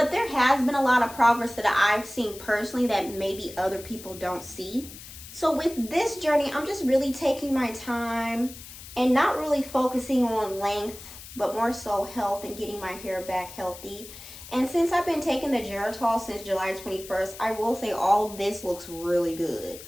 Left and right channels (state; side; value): noise; left; hiss, 15 dB below the sound